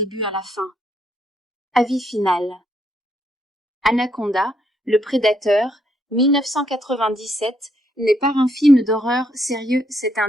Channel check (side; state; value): both; normal; correlation 0.74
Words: à la fin. Avis final. Anaconda, le prédateur, 1997, n'est pas un film d'horreur sérieux, c'est un